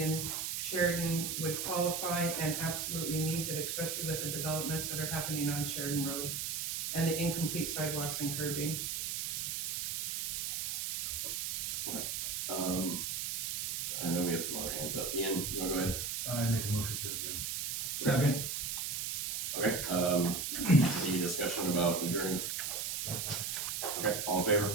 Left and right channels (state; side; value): noise; right; hiss, 2 dB below the sound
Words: Sheridan would qualify and absolutely needs it, especially with the developments that are happening on Sheridan Road and the incomplete sidewalks and curbing. I know we have some other hands up. Ian, you wanna go ahead? I make a motion to adjourn. Second. Okay, any discussion about adjourning? Okay, all in